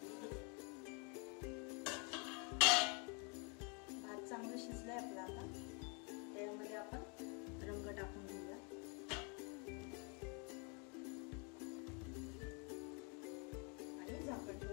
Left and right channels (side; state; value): right; quieter; 35.3 dB